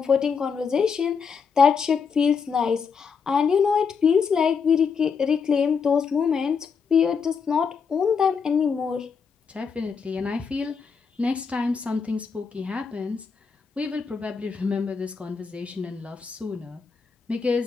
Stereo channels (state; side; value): quieter; right; 5.9 dB